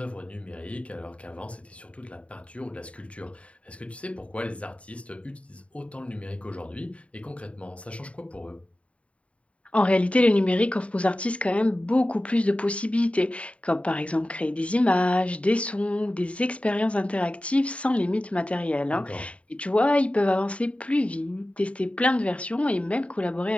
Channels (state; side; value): late; right; 0.063 ms